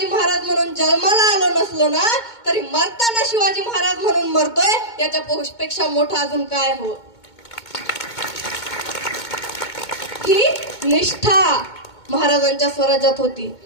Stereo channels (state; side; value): late; right; 2.2 ms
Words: महाराज म्हणून जन्माला आलो नसलो ना, तरी मरताना शिवाजी महाराज म्हणून मरतोय, याच्यापेक्षा मोठं अजून काय हो. ही निष्ठा महाराजांच्या स्वराज्यात होती.